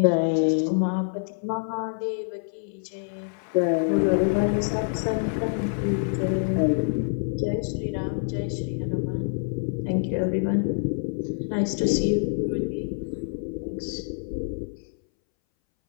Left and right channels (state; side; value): silent; right; 61 dB below the other